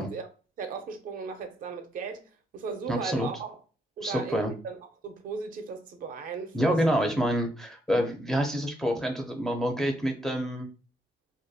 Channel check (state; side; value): normal; both; correlation 0.75